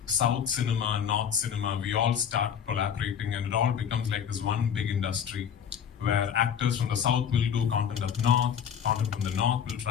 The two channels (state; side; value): quieter; right; 8.2 dB